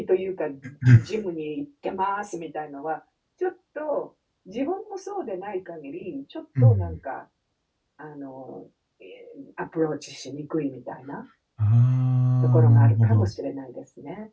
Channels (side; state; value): both; identical; correlation 1.00